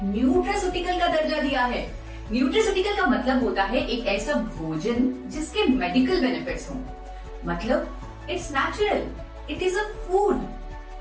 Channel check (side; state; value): both; identical; correlation 1.00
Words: न्यूट्रास्यूटिकल का दर्जा दिया है। न्यूट्रास्यूटिकल का मतलब होता है एक ऐसा भोजन जिसके मेडिकल बेनिफिट्स हों। मतलब it's natural, it is a food,